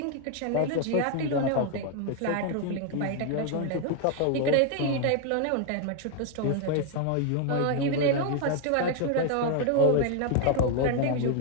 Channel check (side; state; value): both; different; correlation 0.00